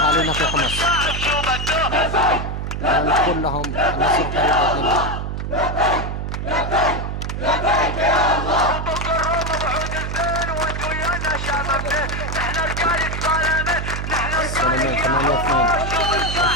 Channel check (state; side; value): noise; right; hum, 4 dB below the sound